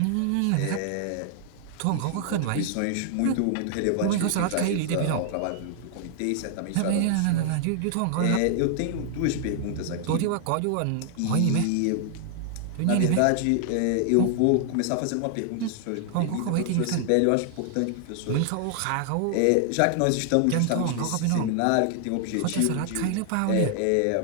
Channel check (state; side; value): different; both; correlation 0.00